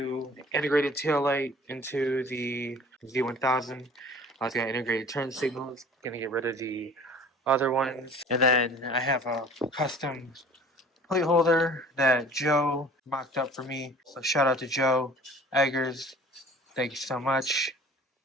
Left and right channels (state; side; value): normal; both; correlation 0.47